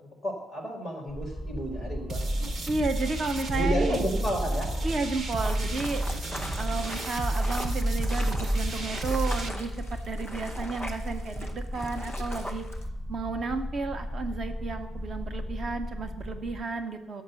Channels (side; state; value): both; normal; correlation 0.84